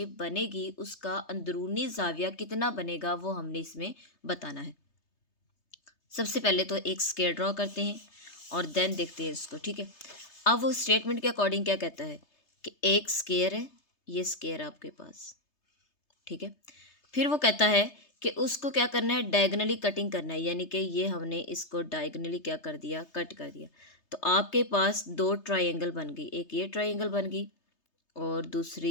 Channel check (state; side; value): late; right; 3.3 ms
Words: बनेगी उसका अंदरूनी जाविया कितना बनेगा वो हमने इसमें बताना है। सबसे पहले तो एक स्क्वायर ड्रॉ करते हैं और देन देखते हैं इसको, ठीक है। अब वो स्टेटमेंट के अकॉर्डिंग क्या कहता है कि एक स्क्वायर है, ये स्क्वायर आपके पास, ठीक है। फिर वो कहता है कि उसको क्या करना है, डायगनली कटिंग करना है, यानी कि ये हमने इसको डायगनली क्या कर दिया, कट कर दिया। तो आपके पास दो ट्रायंगल बन गई, एक ये ट्रायंगल बन गई और